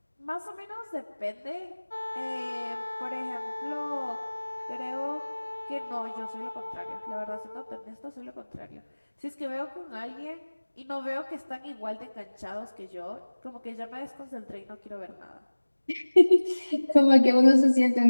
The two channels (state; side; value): inverted; both; correlation -1.00